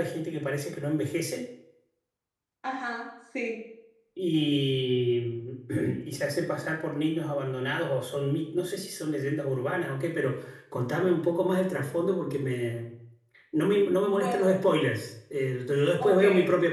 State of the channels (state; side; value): identical; both; correlation 1.00